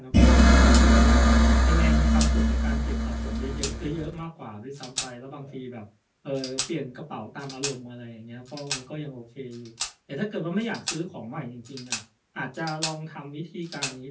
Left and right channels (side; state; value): both; identical; correlation 1.00